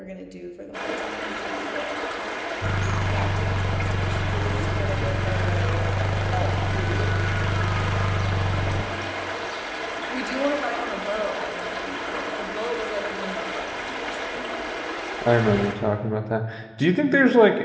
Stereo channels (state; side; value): identical; both; correlation 1.00